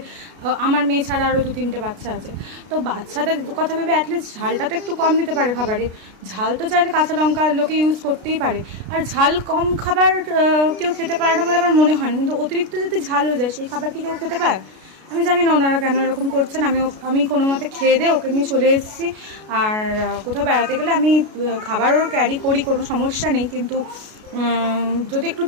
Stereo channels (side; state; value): left; late; 33 ms